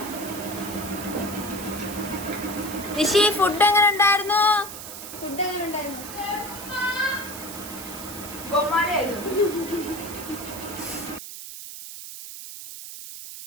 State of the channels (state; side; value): noise; right; hiss, 11 dB below the sound